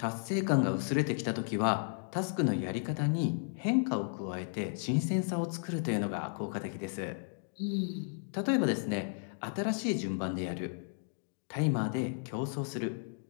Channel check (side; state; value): right; silent; digital silence